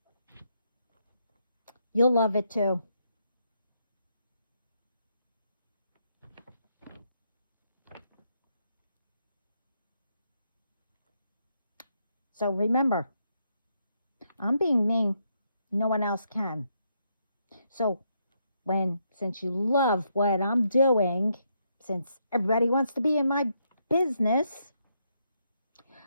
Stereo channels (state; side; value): inverted; both; correlation -0.77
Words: You'll love it too. So remember, I'm being me. No one else can. So since you love what I'm doing, since everybody wants to be in my business,